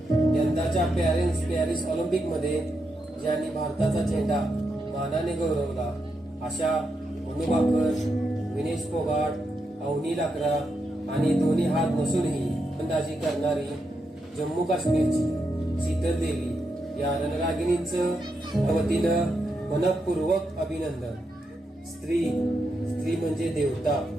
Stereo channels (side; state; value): both; normal; correlation 0.84